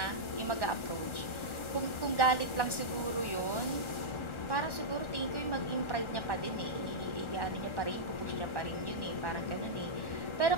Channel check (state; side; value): late; right; 1.4 ms